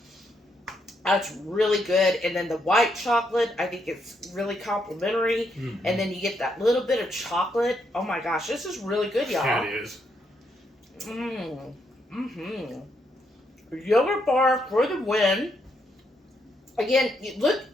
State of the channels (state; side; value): normal; both; correlation 0.77